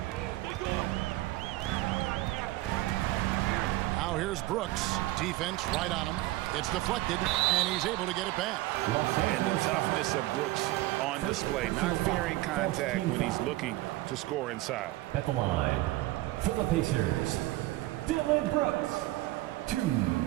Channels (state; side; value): quieter; left; 18.0 dB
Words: Now here's Brooks. Defense right on him. It's deflected, and he's able to get it back. And the toughness of Brooks on display, not fearing contact when he's looking to score inside. At the line, for the Pacers, Dillon Brooks. 2